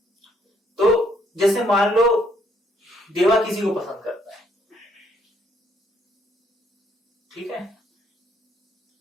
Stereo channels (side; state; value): both; normal; correlation 0.69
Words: तो जैसे मान लो देवा किसी को पसंद करता है, ठीक है,